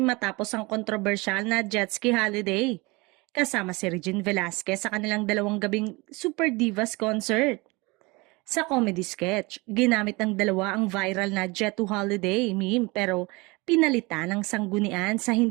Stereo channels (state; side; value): quieter; left; 24.9 dB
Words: matapos ang kontrobersyal na jet ski holiday. Kasama si Regine Velasquez sa kanilang dalawang gabing Super Divas concert. Sa comedy sketch, ginamit ng dalawa ang viral na Jet to Holiday meme pero pinalitan ng sanggunian sa